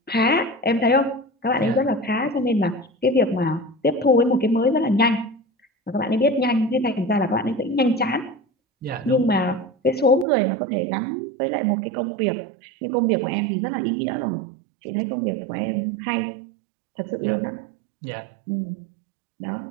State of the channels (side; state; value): left; drops out; at 10.2 s